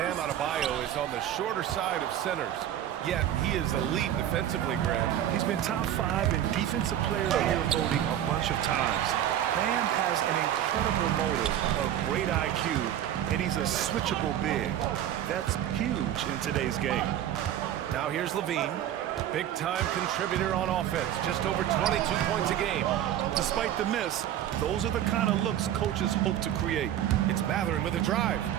Adebayo is on the shorter side of centers. Yet he is elite defensively, Grant. He's been top 5 in Defensive Player of the Year voting a bunch of times. Bam has an incredible motor, a great IQ, and he's a switchable big. That's huge in today's game. Now here's Levine. Big-time contributor on offense, just over 22 points a game. Despite the miss, those are the kind of looks coaches hope to create. It's Matherin with a drive.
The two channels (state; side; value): quieter; left; 11.2 dB